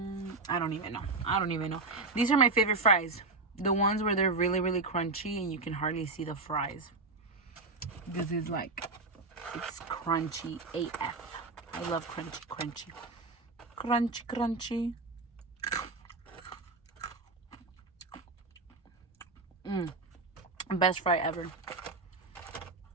I don't even know. These are my favorite fries. The ones where they're really, really crunchy and you can hardly see the fries. This is it's crunchy AF. I love crunchy. Crunchy. Best fry ever.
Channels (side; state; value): left; quieter; 3.6 dB